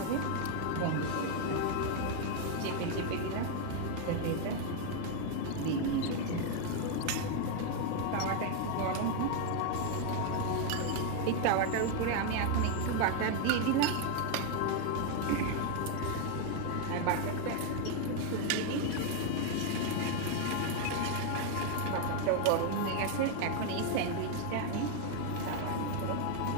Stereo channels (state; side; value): different; both; correlation 0.01